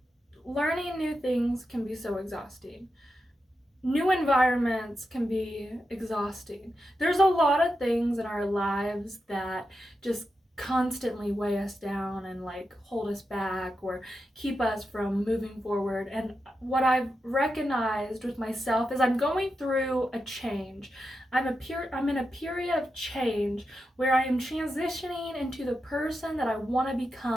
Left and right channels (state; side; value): normal; both; correlation 0.88